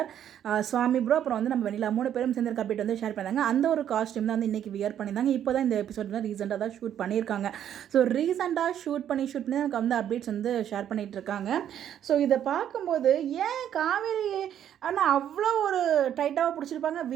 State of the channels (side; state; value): left; quieter; 10.1 dB